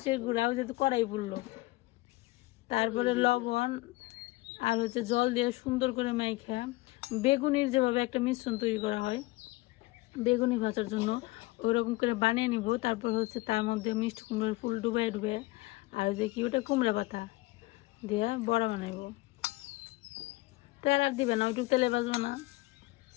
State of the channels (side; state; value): right; quieter; 20.8 dB